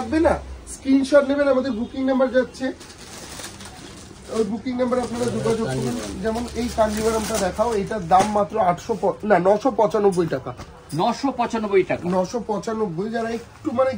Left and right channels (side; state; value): both; identical; correlation 1.00